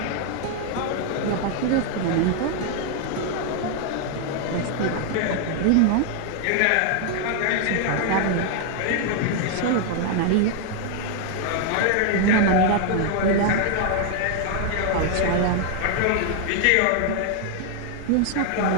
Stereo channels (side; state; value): both; different; correlation 0.00